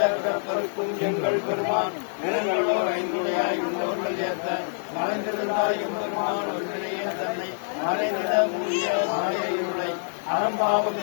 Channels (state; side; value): silent; right; digital silence